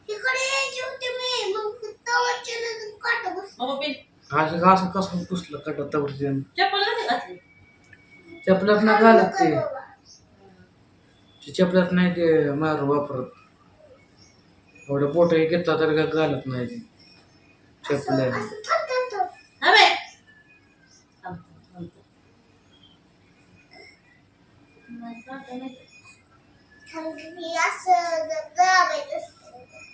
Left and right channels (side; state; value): both; identical; correlation 1.00